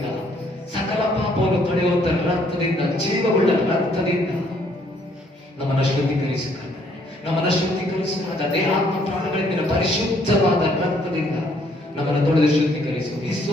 ಸಕಲ ಪಾಪವನ್ನು ತೊಳೆಯುವಂತ ರಕ್ತದಿಂದ, ಜೀವವುಳ್ಳ ರಕ್ತದಿಂದ ನಮ್ಮನ್ನು ಶುದ್ಧೀಕರಿಸು ಕರ್ತನೆ. ನಮ್ಮನ್ನು ಶುದ್ಧೀಕರಿಸುವಾಗ ದೇಹಾತ್ಮ ಪ್ರಾಣಗಳಿಂದ ಪರಿಶುದ್ಧವಾದ ರಕ್ತದಿಂದ ನಮ್ಮನ್ನು ತೊಳೆದು ಶುದ್ಧೀಕರಿಸು.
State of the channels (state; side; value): normal; both; correlation 0.66